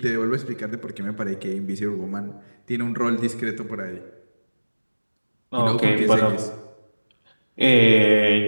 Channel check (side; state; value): both; inverted; correlation -1.00